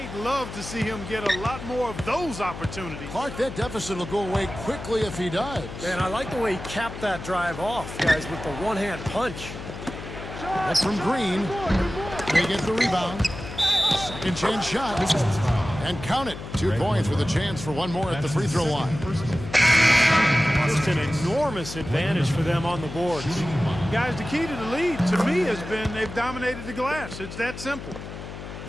love to see him get a lot more of those opportunities. Clark, that deficit will go away quickly if he does. And I like the way he capped that drive off, guys, with the one-hand punch. That's from Green. They get the rebound. 2nd chance shot. And count it. 2 points with a chance for one more at the free throw line. Just an enormous advantage for them on the boards. Guys, the key to the lead, to me, has been they've dominated the glass. It's that simple.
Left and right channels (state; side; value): noise; left; hum, 10 dB below the sound